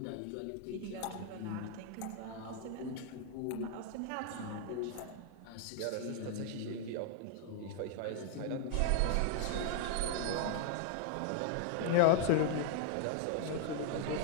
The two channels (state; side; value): different; both; correlation -0.01